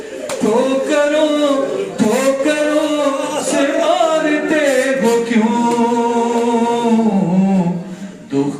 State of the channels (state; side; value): identical; both; correlation 1.00